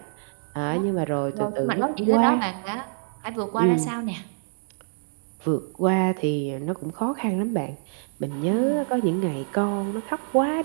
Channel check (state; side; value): silent; left; 61 dB below the other